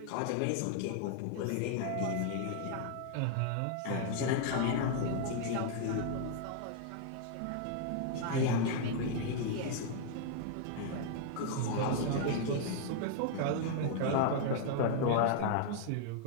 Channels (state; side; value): different; both; correlation 0.00